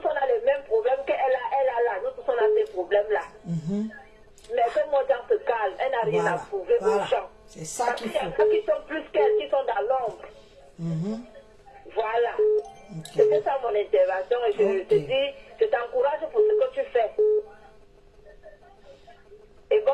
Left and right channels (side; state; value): both; identical; correlation 1.00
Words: on a les mêmes problèmes qu'elle a là, nous tous on a ces problèmes là. Mais que Moja se calme, elle n'a rien à prouver aux gens. C'est ça qu'il faut. Parce qu'il y a qui sont plus qu'elle, qui sont dans l'ombre. Voilà. C'était ça mon intervention et je te dis, je t'encourage pour ce que tu fais. Et